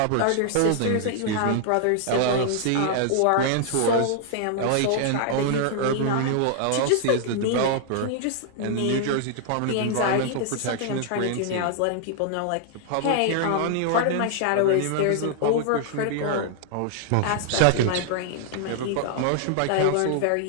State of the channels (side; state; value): both; different; correlation -0.01